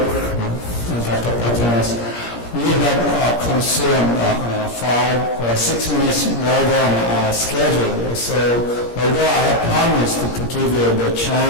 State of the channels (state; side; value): late; right; 17 ms